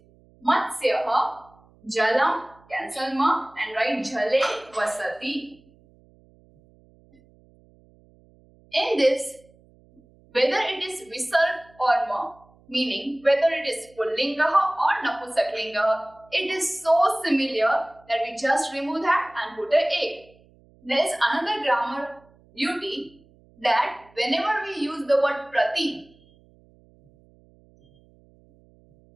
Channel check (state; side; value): noise; right; hum, 29 dB below the sound